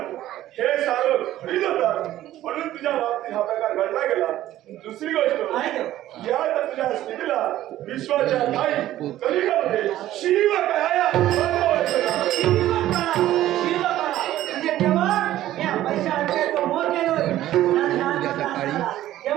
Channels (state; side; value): quieter; left; 13.8 dB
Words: हे सारं खरीद होता म्हणून तुझ्या बाबतीत हा प्रकार घडला गेला. दुसरी गोष्ट या तुझ्या स्थितीला विश्वाच्या काही कलियुगामध्ये शिव कळाया